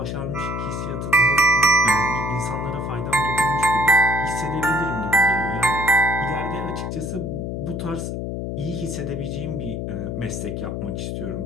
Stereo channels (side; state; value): left; noise; hum, 4 dB below the sound